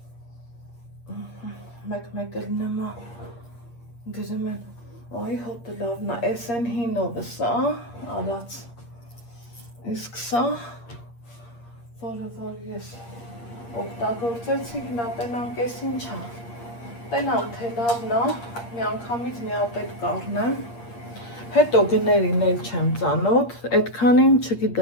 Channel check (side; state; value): right; late; 8.6 ms